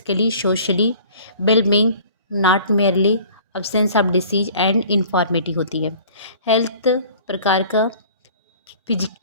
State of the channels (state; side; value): inverted; both; correlation -0.48